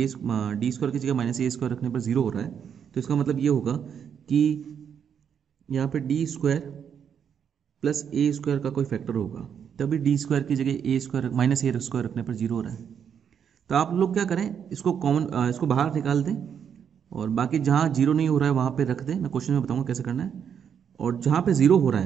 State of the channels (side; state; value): left; quieter; 7.9 dB